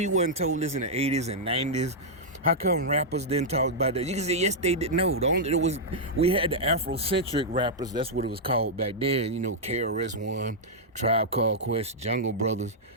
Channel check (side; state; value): both; normal; correlation -0.07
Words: wasn't told this in the 80s and 90s? How come rappers didn't talk about that? You can say, yes, they did. No, we had the Afrocentric rappers. That's what it was called back then. KRS-One, Tribe Called Quest, Jungle Brothers.